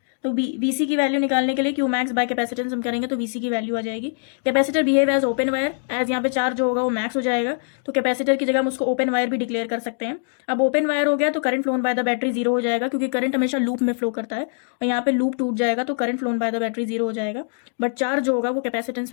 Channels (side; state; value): right; silent; digital silence